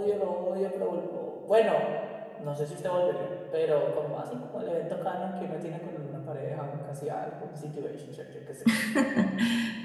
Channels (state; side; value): identical; both; correlation 1.00